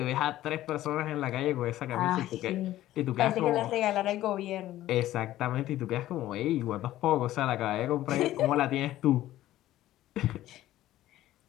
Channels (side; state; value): right; quieter; 14.4 dB